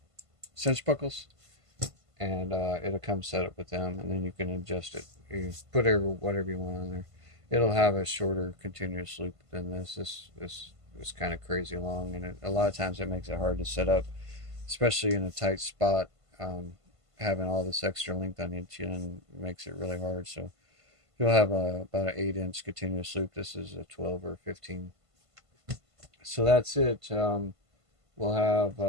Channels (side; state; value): left; late; 1.5 ms